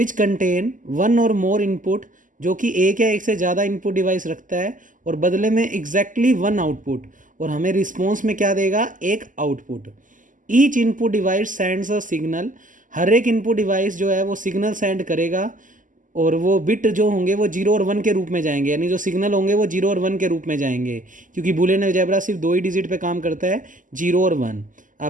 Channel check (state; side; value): late; left; 0.38 ms